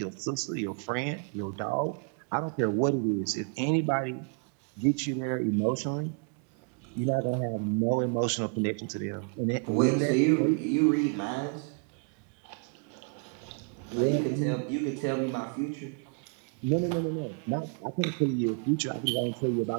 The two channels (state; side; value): quieter; left; 38.2 dB